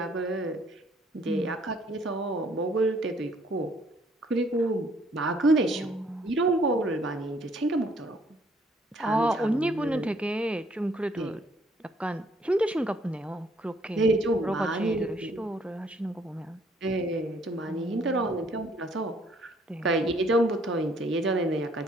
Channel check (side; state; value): both; normal; correlation 0.64